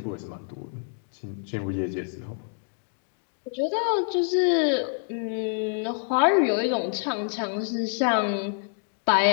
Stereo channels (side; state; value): right; silent; 60 dB below the other